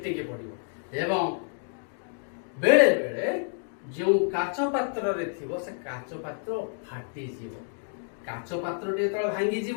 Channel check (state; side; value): silent; right; 59 dB below the other